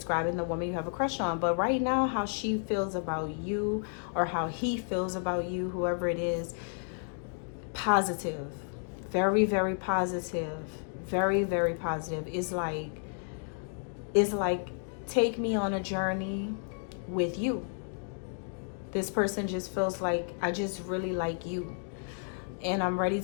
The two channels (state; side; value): silent; right; 57 dB below the other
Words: the woman you have a crush on. But right now, how she feels about you, or how he feels about you, whoever it is, positive. Very, very positive. Very, very positive. It's like, take me on a journey with you. This person just feels like, I just really like you, and I'm ready